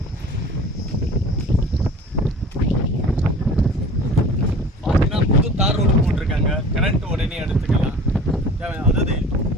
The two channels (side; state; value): both; normal; correlation 0.43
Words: பார்த்தீங்கன்னா புது தார் ரோடு போட்டிருக்காங்க. கரண்ட் உடனே எடுத்துக்கலாம். அதாவது